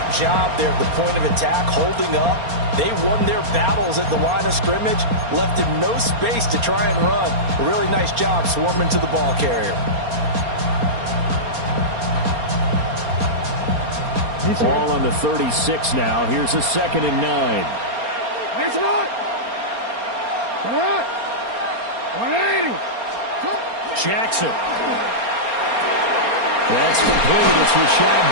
job there at the point of attack, holding up. They won their battles at the line of scrimmage, left him no space to try and run. A really nice job swarming to the ball carrier. Ball on the 36 now. Here's a 2nd and 9. It's not. 180. Jackson. That's complete. It's Rashad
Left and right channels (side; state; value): left; late; 4.3 ms